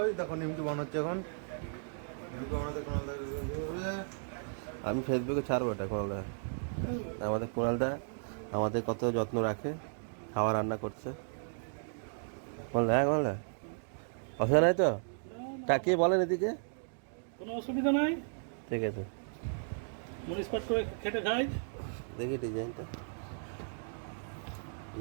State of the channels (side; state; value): left; silent; digital silence